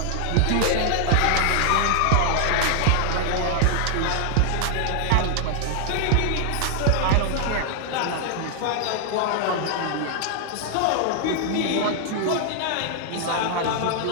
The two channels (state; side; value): different; both; correlation 0.00